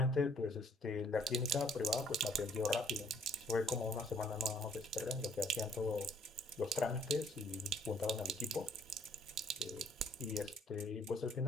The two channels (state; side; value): normal; both; correlation 0.62